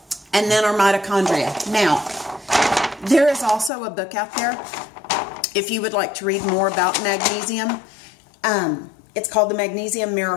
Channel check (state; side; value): drops out; right; at 3.7 s